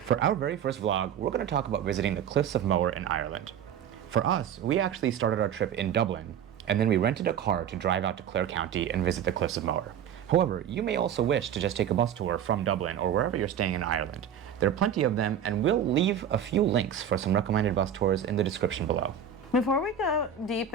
For our very first vlog, we're going to talk about visiting the Cliffs of Moher in Ireland. For us, we actually started our trip in Dublin, and then we rented a car to drive out to Clare County and visit the Cliffs of Moher. However, you may also wish to just take a bus tour from Dublin or wherever you're staying in Ireland. There are plenty of them, and we'll leave a few links for some recommended bus tours in the description below. Before we go deep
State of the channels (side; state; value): left; quieter; 8.5 dB